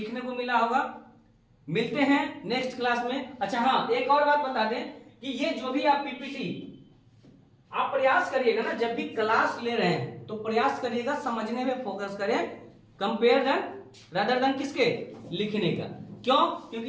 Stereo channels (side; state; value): both; identical; correlation 1.00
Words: को मिला होगा। मिलते हैं नेक्स्ट क्लास में। अच्छा हाँ, एक और बात बता दें कि ये जो भी आप पीपीटी आप प्रयास करिएगा ना, जब भी क्लास ले रहे हैं तो प्रयास करिएगा समझने में फोकस करें, कंपेयर देन रादर देन किसके, लिखने का। क्यों?